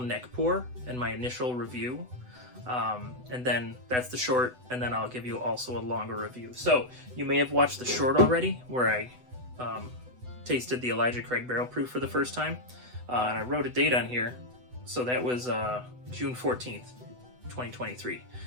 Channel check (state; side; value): late; left; 8.0 ms